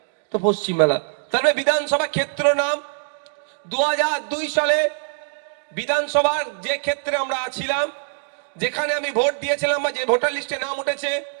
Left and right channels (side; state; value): left; silent; digital silence